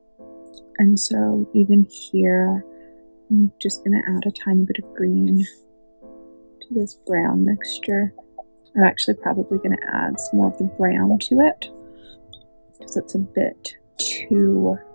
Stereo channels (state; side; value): inverted; both; correlation -1.00